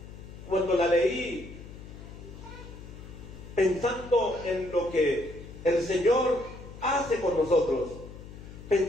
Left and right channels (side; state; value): left; noise; hum, 14 dB below the sound